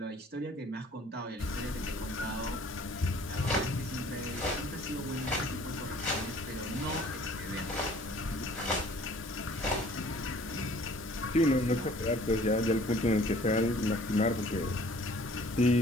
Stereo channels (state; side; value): normal; both; correlation 0.53